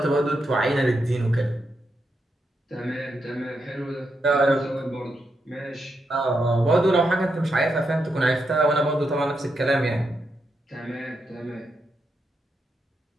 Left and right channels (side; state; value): both; normal; correlation 0.83